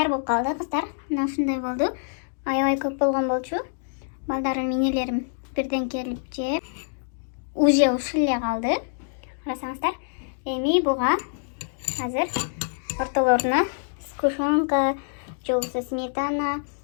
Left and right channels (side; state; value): right; silent; digital silence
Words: болуп калды кыздар. Мына ушундай болду. Аябай көп болгон болчу. Балдарым, инелерим бирден келип жеп, уже ушул эле калды. Карасаңыздар. Эми буга азыр ортолоруна сгущенка, же болбосо сметана,